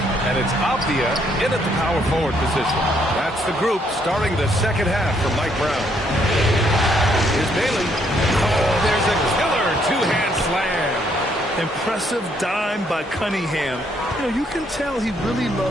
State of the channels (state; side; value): normal; both; correlation 0.70